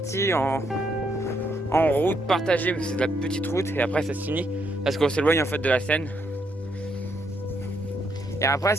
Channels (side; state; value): both; normal; correlation 0.75